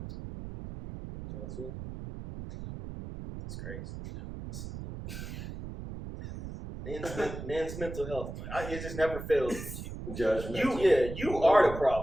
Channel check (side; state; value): right; noise; rumble, 9 dB below the sound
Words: Taylor Swift. That's crazy. Men's mental health. It just never fails with you. Judgmental. You are the